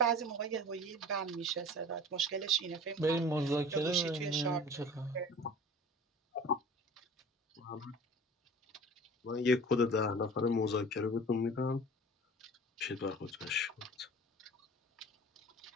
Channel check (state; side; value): normal; both; correlation 0.41